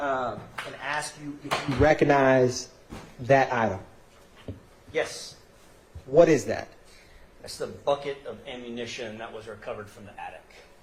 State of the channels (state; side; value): identical; both; correlation 1.00